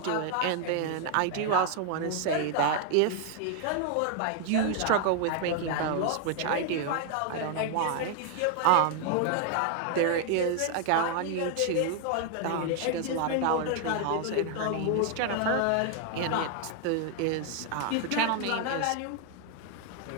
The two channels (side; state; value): both; different; correlation 0.00